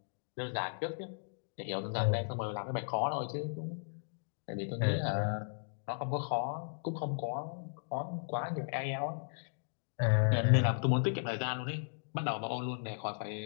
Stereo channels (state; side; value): silent; right; digital silence